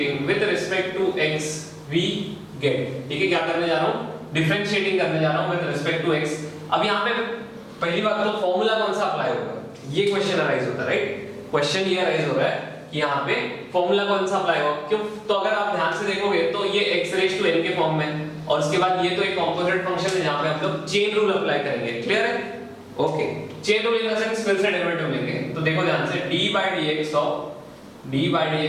to x we get, ठीक है? क्या करने जा रहा हूँ, डिफरेंशिएटिंग करने जा रहा हूँ with respect to x। अब यहाँ पे पहली बात तो फॉर्मूला कौन सा अप्लाई होगा, ये क्वेश्चन अराइज होता है, राइट? क्वेश्चन ये अराइज हो रहा है कि यहाँ पे फॉर्मूला कौन सा अप्लाई होगा, क्यों? तो अगर आप ध्यान से देखोगे तो ये x रेज़ टू n के फॉर्म में, और उसके बाद ये तो एक कंपोजिट फंक्शन है जहाँ पे हम लोग चेन रूल अप्लाई करेंगे, क्लियर है? Okay, chain rule in the sense फिर से डेरिवेटिव लेंगे, तो देखो ध्यान से, d by dx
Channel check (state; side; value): identical; both; correlation 1.00